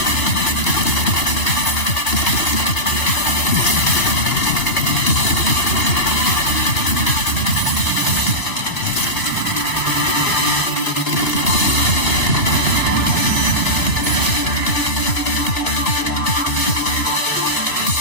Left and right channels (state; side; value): late; right; 2.8 ms